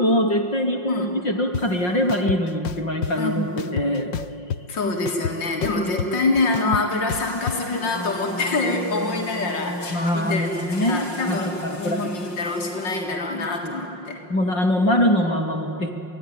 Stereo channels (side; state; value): right; late; 5.6 ms